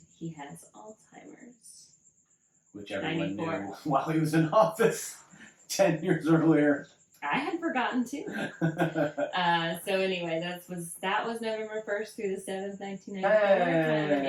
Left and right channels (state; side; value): identical; both; correlation 1.00